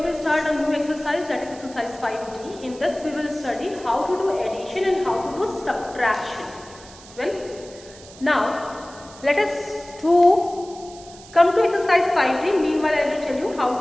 to start a new exercise, that is exercise 5D. In this we will study how to do addition and how to do subtraction. Well, now let us come to exercise 5D. Meanwhile I will tell you how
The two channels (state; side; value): noise; right; hiss, 20 dB below the sound